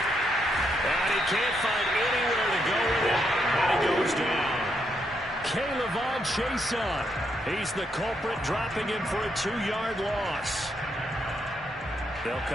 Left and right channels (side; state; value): both; normal; correlation 0.78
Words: And he can't find anywhere to go with it. And he goes down. Caleb Chason. He's the culprit, dropping him for a 2-yard loss. They'll